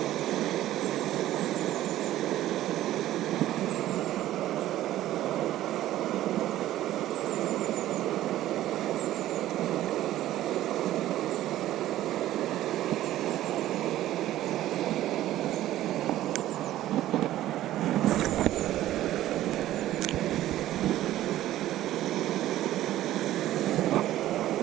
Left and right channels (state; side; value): quieter; left; 14.0 dB